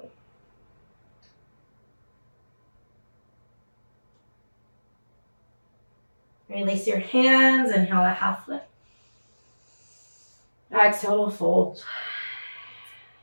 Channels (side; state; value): both; inverted; correlation -1.00